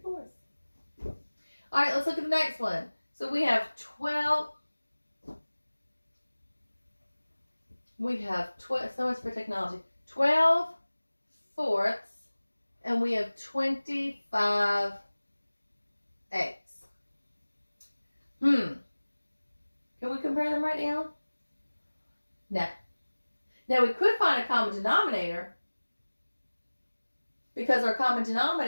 All right, let's look at the next one. So we have 12. We have 12, so much for technology. 12/4, and we have 25/8. Can we compare them right now? No. Now we could find a common denominator, because our common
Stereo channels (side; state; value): both; inverted; correlation -1.00